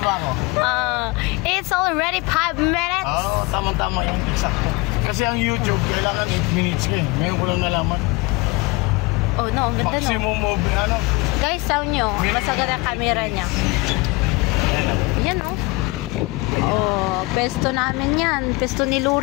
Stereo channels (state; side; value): quieter; right; 24.2 dB